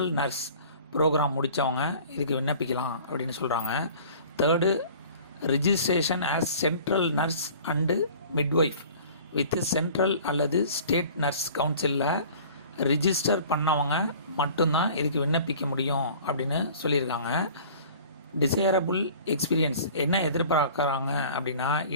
nurse program முடித்தவங்க இதுக்கு விண்ணப்பிக்கலாம் அப்படின்னு சொல்கிறாங்க. Third registration as central nurse and midwife with central அல்லது ஸ்டேட் நர்ஸ் கவுன்சிலில் ரிஜிஸ்டர் பண்ணவங்க மட்டும்தான் இதுக்கு விண்ணப்பிக்க முடியும் அப்படின்னு சொல்லியிருக்காங்க. டிசைரபிள் எக்ஸ்பீரியன்ஸ் என்ன எதிர்பார்க்குறாங்க அப்படின்னா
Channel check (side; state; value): both; inverted; correlation -0.46